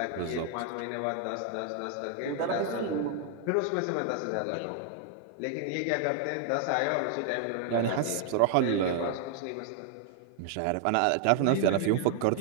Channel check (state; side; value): different; both; correlation 0.00